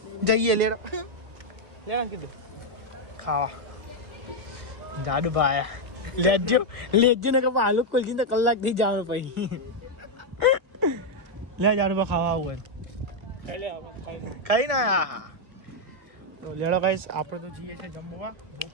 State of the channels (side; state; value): left; late; 1.6 ms